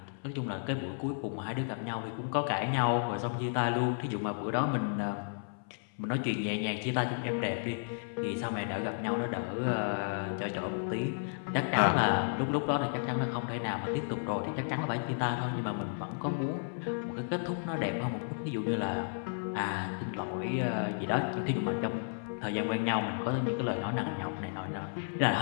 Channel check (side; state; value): right; silent; 56 dB below the other